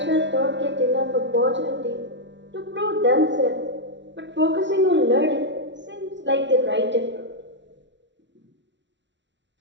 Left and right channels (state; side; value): late; left; 0.52 ms